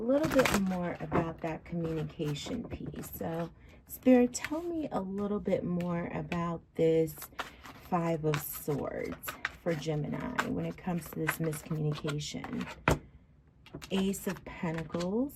bit more about that communication piece. So, Spirit, tell me a little bit more about this Five of Swords for Gemini when it comes to this miscommunication. Ace of Pentacles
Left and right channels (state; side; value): identical; both; correlation 1.00